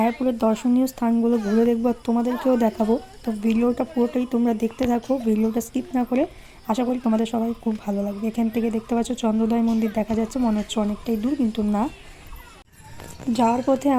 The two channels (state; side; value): identical; both; correlation 1.00